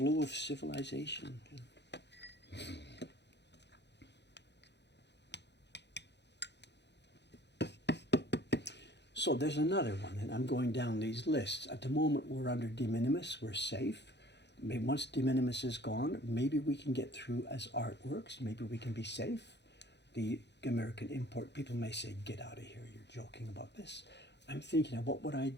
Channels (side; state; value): right; late; 0.50 ms